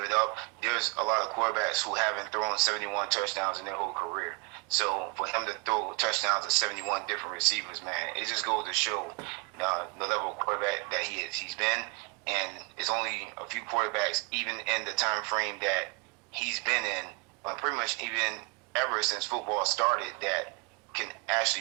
it up. There's a lot of quarterbacks who haven't thrown 71 touchdowns in their whole career. So for him to throw touchdowns to 71 different receivers, man, it just goes to show the level of quarterback that he's been. And it's only a few quarterbacks, even in the time frame that he's been in, pretty much even ever since football started, that can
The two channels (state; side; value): quieter; left; 32.3 dB